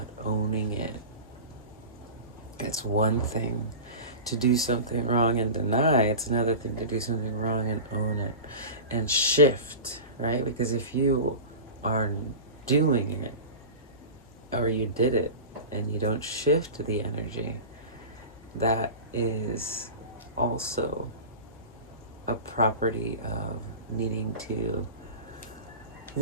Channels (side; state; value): both; inverted; correlation -0.31